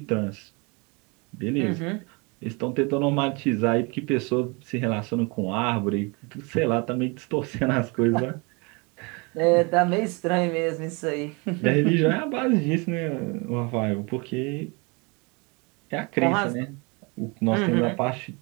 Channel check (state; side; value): quieter; left; 29.6 dB